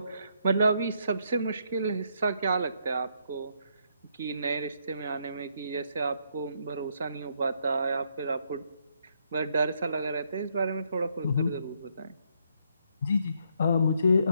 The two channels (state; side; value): inverted; both; correlation -0.74